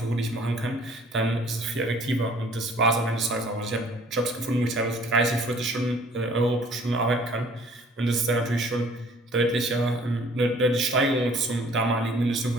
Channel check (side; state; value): both; normal; correlation 0.54